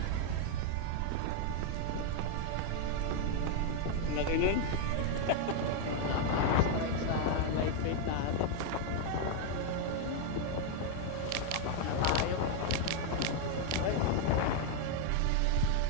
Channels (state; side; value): different; both; correlation 0.00